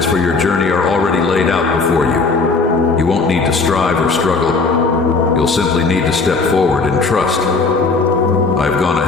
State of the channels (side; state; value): right; quieter; 4.1 dB